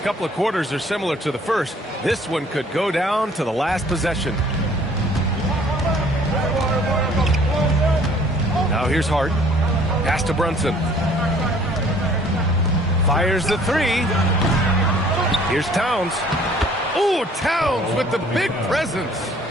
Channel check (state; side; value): normal; both; correlation 0.56